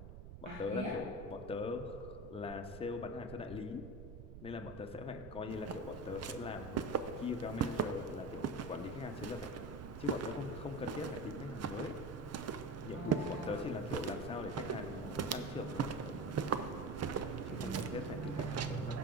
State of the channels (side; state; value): right; noise; rumble, 12 dB below the sound